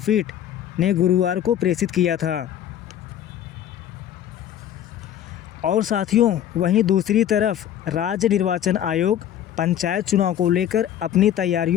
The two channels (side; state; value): right; quieter; 10.5 dB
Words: ने गुरुवार को प्रेषित किया था। और साथियों, वहीं दूसरी तरफ राज्य निर्वाचन आयोग पंचायत चुनाव को लेकर अपनी